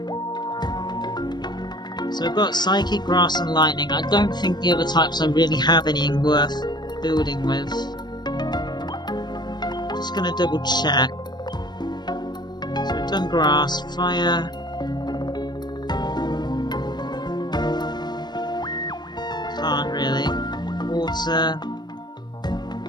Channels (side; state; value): right; late; 0.21 ms